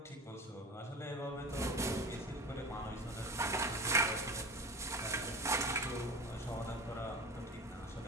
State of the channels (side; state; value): both; normal; correlation 0.31